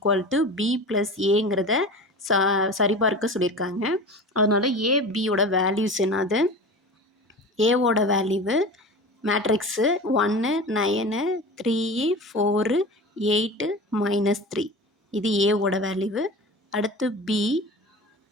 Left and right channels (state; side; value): normal; both; correlation 0.33